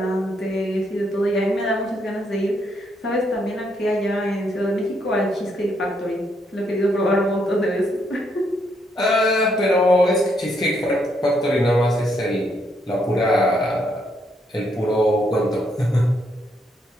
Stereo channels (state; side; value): normal; both; correlation 0.75